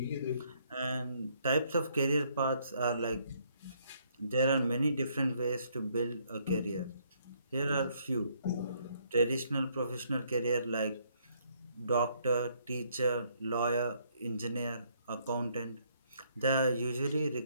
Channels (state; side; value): inverted; both; correlation -0.69